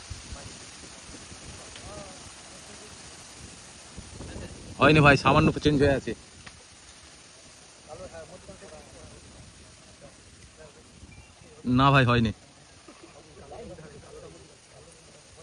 হয়নি ভাই, সামান্য চেঞ্জ হয়ে আছে। না ভাই হয়নি।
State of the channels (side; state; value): both; identical; correlation 1.00